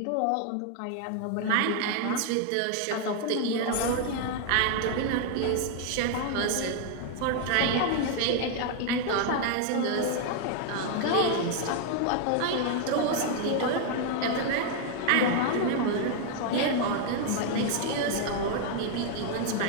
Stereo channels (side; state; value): both; different; correlation 0.00